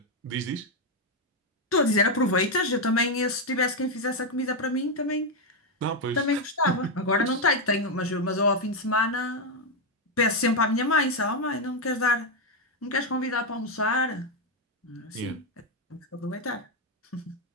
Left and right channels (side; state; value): both; normal; correlation 0.03